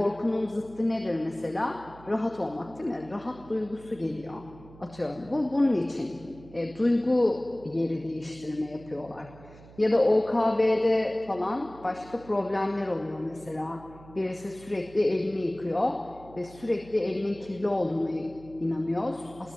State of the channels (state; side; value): noise; right; hum, 20 dB below the sound